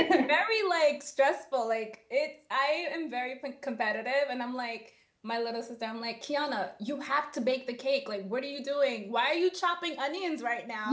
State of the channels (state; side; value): identical; both; correlation 1.00